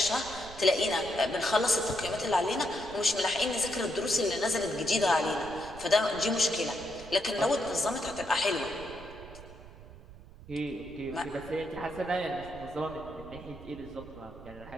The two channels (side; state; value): right; noise; rumble, 17 dB below the sound